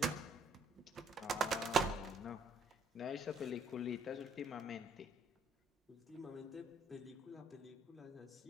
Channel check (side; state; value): both; normal; correlation 0.65